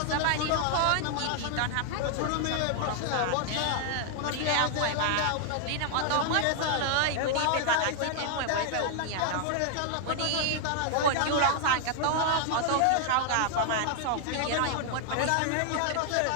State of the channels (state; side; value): different; both; correlation 0.00